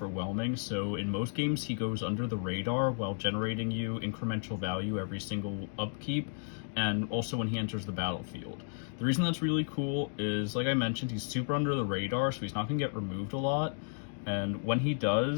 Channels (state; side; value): silent; right; digital silence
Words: so in most games he goes under the radar while generating you incremental value every single upkeep, and also when he enters the battlefield. The reason that's really cool is, like I mentioned, he's super under the radar, so he's not going to get removed a lot. And when he